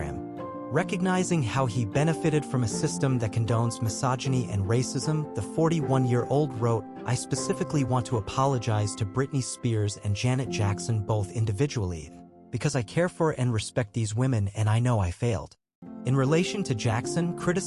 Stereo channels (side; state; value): both; identical; correlation 1.00